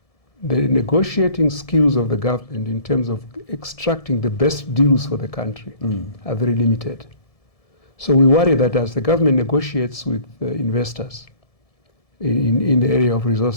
the negotiating skills of the government in terms of extracting the best deals for the country are very limited. So we worry that as the government negotiates with investors in the area of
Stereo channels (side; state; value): right; late; 1.7 ms